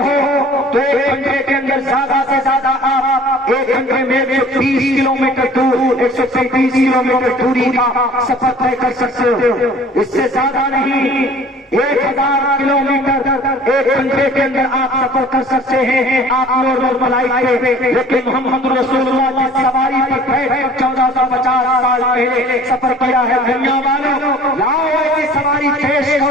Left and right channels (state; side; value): normal; both; correlation 0.49